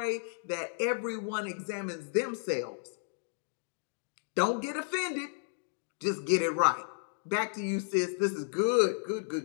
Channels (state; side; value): silent; right; digital silence